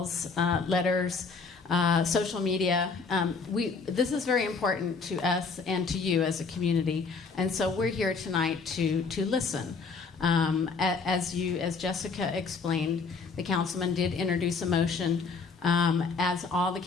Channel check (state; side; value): quieter; right; 4.7 dB